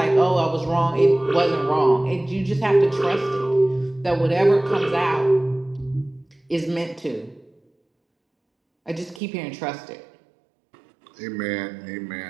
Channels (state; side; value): drops out; left; at 9.2 s